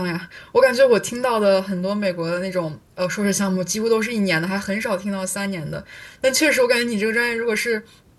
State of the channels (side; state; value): both; identical; correlation 1.00